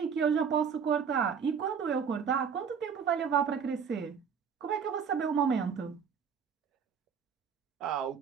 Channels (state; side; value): quieter; left; 6.8 dB